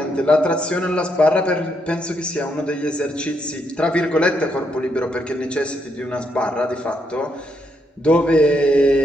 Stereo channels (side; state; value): both; normal; correlation 0.77